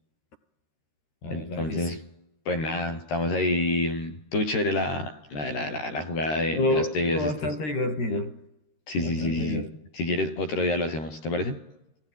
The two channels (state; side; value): late; right; 13 ms